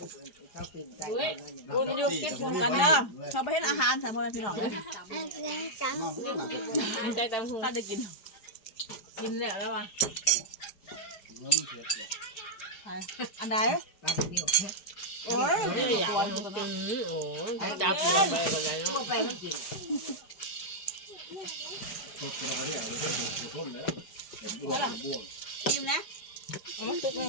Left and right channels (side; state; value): right; late; 4.9 ms